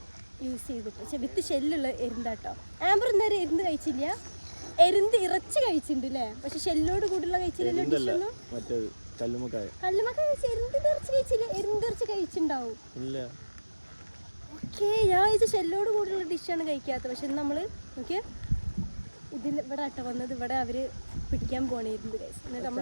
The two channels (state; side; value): inverted; both; correlation -1.00